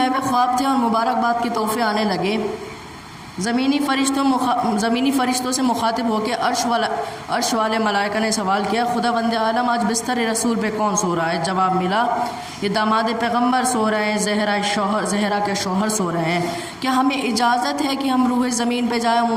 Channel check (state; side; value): identical; both; correlation 1.00